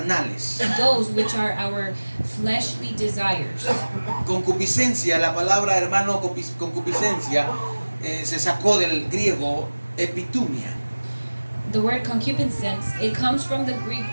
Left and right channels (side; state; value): both; inverted; correlation -1.00